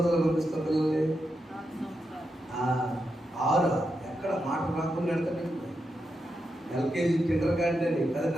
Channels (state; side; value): normal; both; correlation 0.86